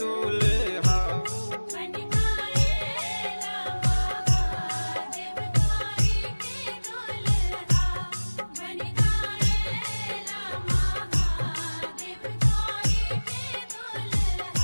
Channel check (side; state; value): both; inverted; correlation -1.00